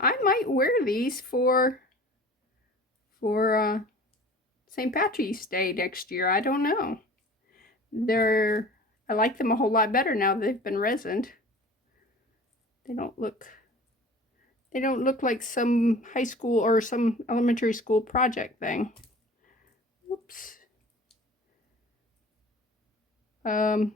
might wear these for St. Patrick's Day next year. I don't know. I like them a whole lot better now they've been resined. They don't look like some high school or some elementary school project thing. Oops.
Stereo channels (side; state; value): both; normal; correlation 0.43